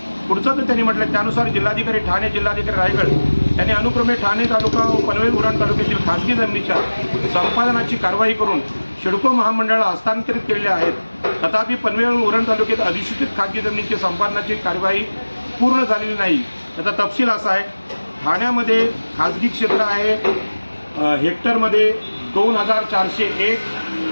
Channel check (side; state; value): both; inverted; correlation -1.00